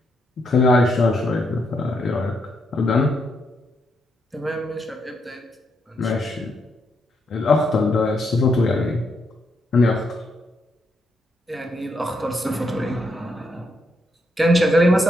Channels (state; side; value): normal; both; correlation 0.78